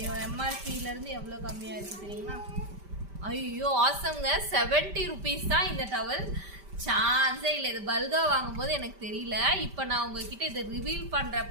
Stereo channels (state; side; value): late; left; 5.1 ms